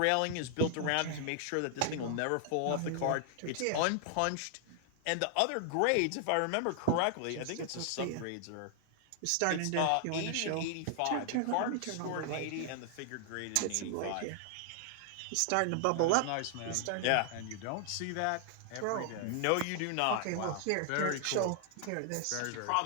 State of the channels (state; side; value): different; both; correlation 0.00